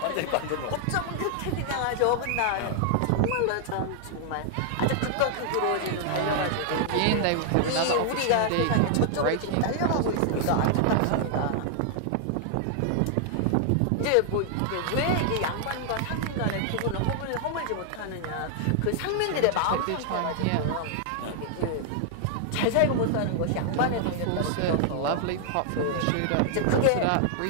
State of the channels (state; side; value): different; both; correlation 0.00